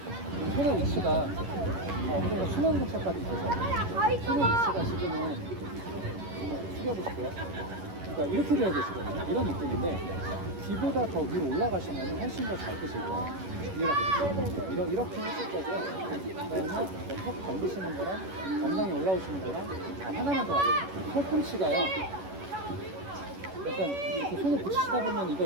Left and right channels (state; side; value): late; left; 11 ms